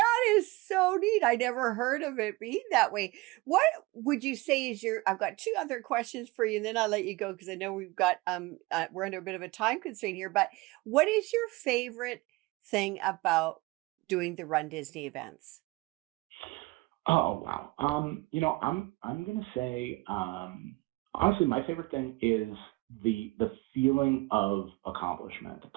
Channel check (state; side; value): quieter; left; 22.5 dB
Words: is so neat. I never heard of it being that way. What would you say is your I've got 2 other questions for you, and then I'll let you go because I know we're under a bit of a time constraint here, but what is your favorite thing about doing the Run Disney events? Oh wow. I'm gonna say honestly my favorite thing is the feeling of accomplishment,